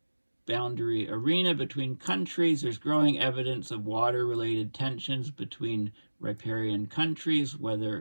arena between countries, there's growing evidence of water-related tensions between riparian countries,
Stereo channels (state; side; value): inverted; both; correlation -1.00